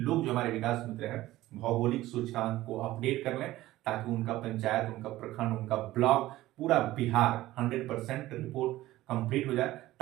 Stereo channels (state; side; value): quieter; left; 16.3 dB